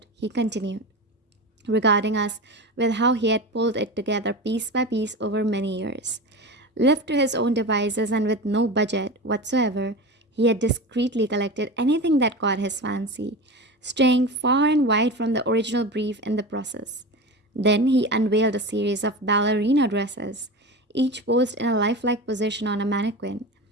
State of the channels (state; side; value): normal; both; correlation 0.27